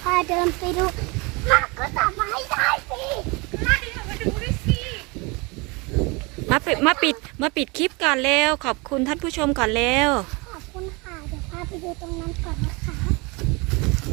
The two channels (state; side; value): quieter; left; 27.4 dB